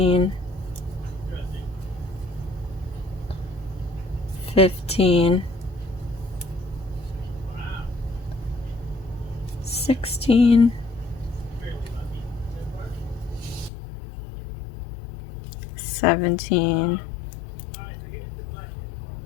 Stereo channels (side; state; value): right; drops out; at 13.7 s